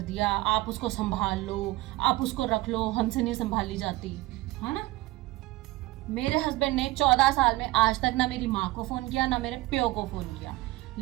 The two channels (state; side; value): quieter; left; 19.3 dB